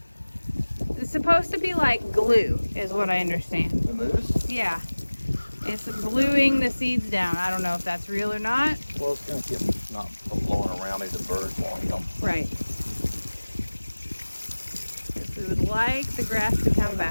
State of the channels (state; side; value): inverted; both; correlation -1.00